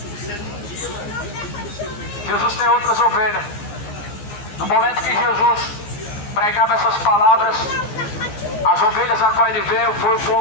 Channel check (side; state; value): right; late; 15 ms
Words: Jesus tem outras ovelhas. No momento que Jesus pregava essas palavras, as ovelhas a qual ele veio foi o